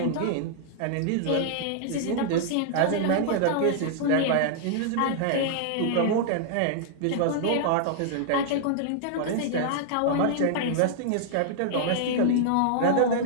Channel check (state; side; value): different; both; correlation -0.01